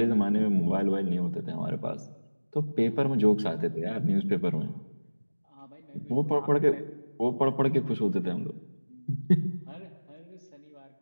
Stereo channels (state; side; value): inverted; both; correlation -1.00